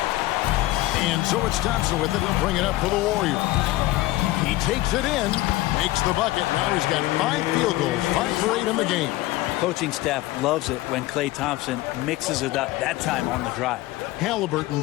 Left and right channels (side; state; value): right; quieter; 17.7 dB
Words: And so it's Thompson with it. He'll bring it up for the Warriors. He takes it in, makes the bucket. Now he's got 5 field goals, 5 for 8 in the game. Coaching staff loves it when Klay Thompson mixes it up, that time on the drive. Halliburton